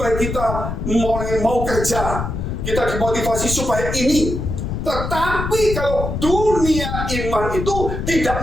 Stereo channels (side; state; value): left; noise; rumble, 4 dB below the sound